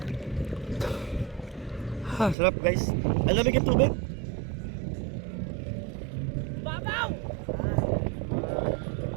Ha, sarap guys. Ang lamig yung tubig. Babaw!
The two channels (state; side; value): drops out; left; at 2.4 s